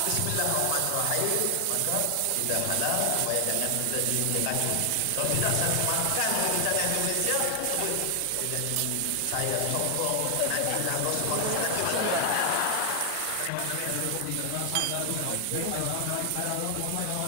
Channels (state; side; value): different; both; correlation 0.00